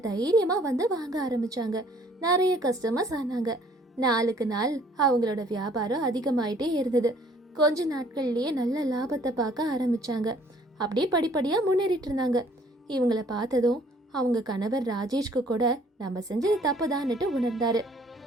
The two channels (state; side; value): normal; both; correlation 0.58